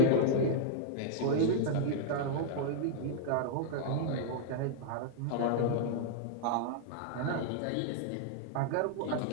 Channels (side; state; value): both; different; correlation 0.00